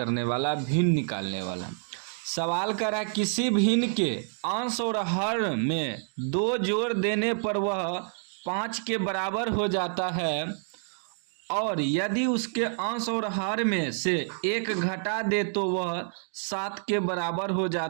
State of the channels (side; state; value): left; silent; digital silence